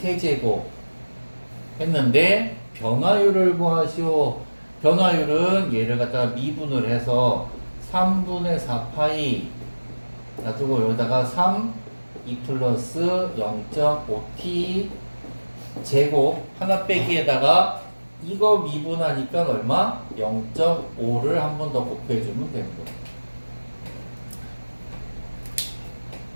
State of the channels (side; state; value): both; inverted; correlation -1.00